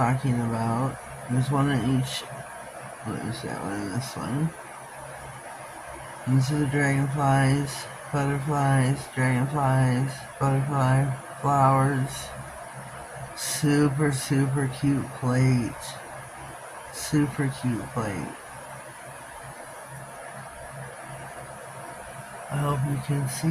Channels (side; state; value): both; identical; correlation 1.00